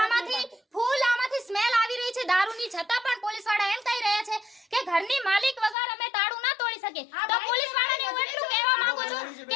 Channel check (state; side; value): drops out; right; at 5.8 s